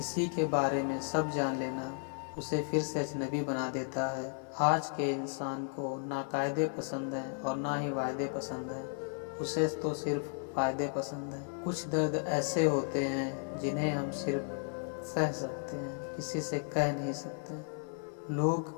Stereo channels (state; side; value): silent; right; 55 dB below the other